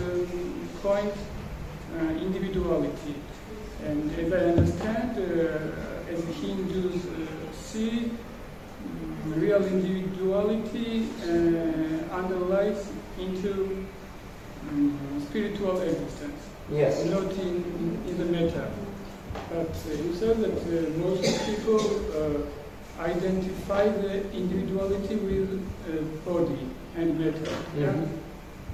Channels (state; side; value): identical; both; correlation 1.00